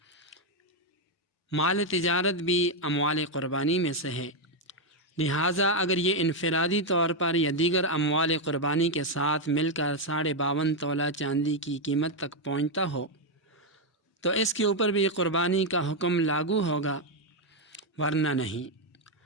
مال تجارت بھی اموال قربانی میں سے ہے، لہٰذا اگر یہ انفرادی طور پر یا دیگر اموال قربانی کے ساتھ مل کر 52.5 تولہ چاندی کی قیمت تک پہنچتا ہو تو اس کے اوپر بھی قربانی کا حکم لاگو ہوگا، ورنہ نہیں۔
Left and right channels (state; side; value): normal; both; correlation 0.02